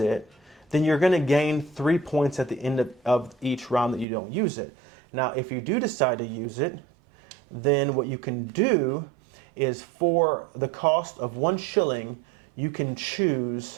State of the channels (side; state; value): left; drops out; at 4.0 s